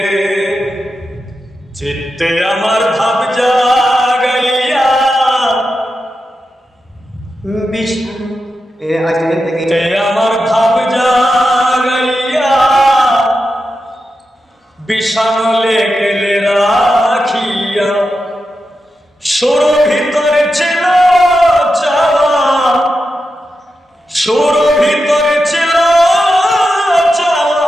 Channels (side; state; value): both; normal; correlation 0.89